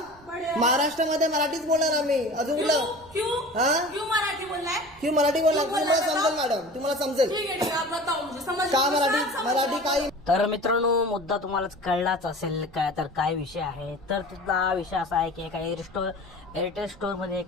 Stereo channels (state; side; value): noise; right; rumble, 24 dB below the sound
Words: महाराष्ट्रामध्ये मराठीच बोलणार आम्ही. अजून क्यों कुठलं? क्यों हा? क्यों मराठी बोलना है? की मराठी बोलणार क्यों तुम्हाला बोलणार समजेल मॅडम, तुम्हाला समजेल ठीक है ठीक है, आप बताओ मुझे समझ का मुझे मराठी सब समझ मराठी आता काही. तर मित्रांनो, मुद्दा तुम्हालाच कळलाच असेल काय, तर काय विषय आहे. तर तिथला विषय असा आहे की एका एअरटेल स्टोअरमध्ये